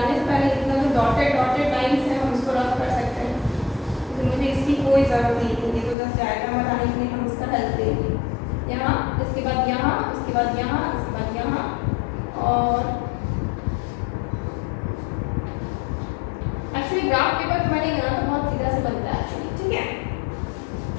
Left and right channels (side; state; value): right; drops out; at 6.0 s